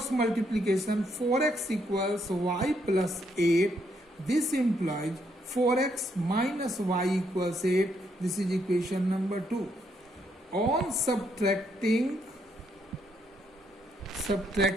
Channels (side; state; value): both; normal; correlation 0.75